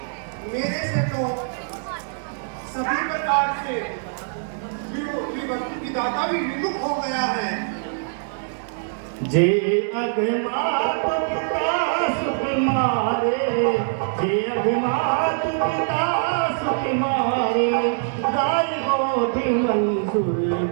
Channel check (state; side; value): silent; left; digital silence